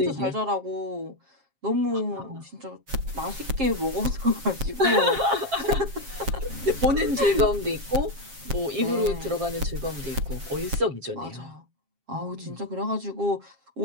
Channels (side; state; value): left; late; 7.4 ms